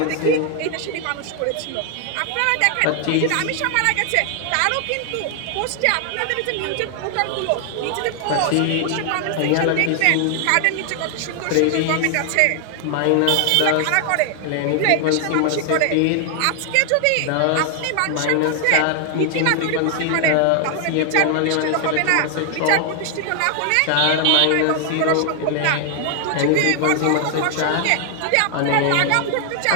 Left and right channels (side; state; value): both; different; correlation 0.00